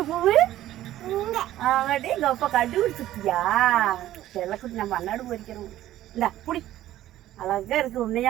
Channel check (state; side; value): quieter; left; 13.8 dB